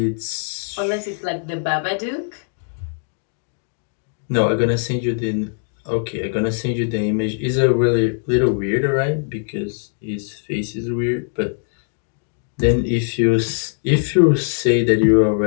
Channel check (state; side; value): silent; right; digital silence